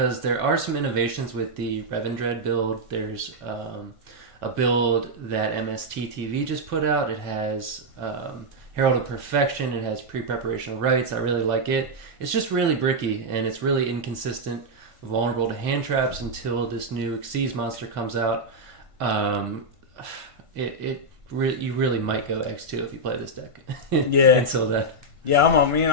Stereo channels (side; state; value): left; late; 1.5 ms